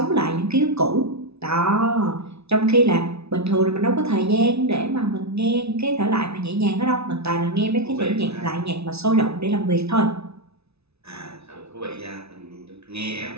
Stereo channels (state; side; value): late; left; 0.80 ms